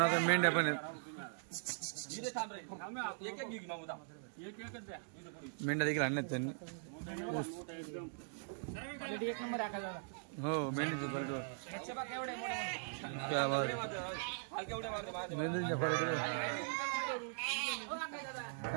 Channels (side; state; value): left; silent; digital silence